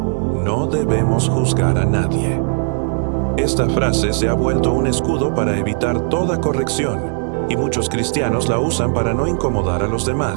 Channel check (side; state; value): left; silent; 68 dB below the other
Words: no debemos juzgar a nadie. Esta frase se ha vuelto un escudo para evitar toda corrección, y muchos cristianos la usan para no incomodar a los